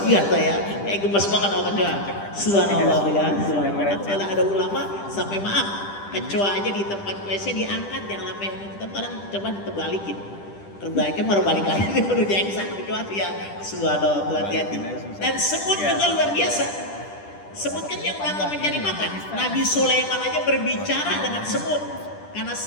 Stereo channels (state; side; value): late; right; 10 ms